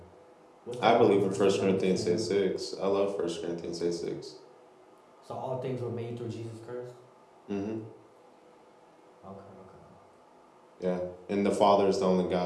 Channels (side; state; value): both; identical; correlation 1.00